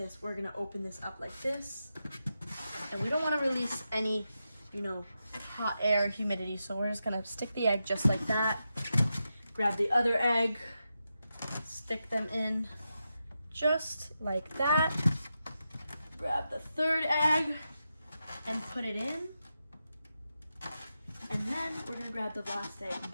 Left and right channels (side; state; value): both; inverted; correlation -0.88